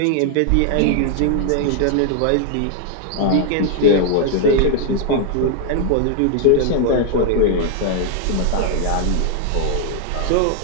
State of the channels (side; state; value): both; different; correlation 0.00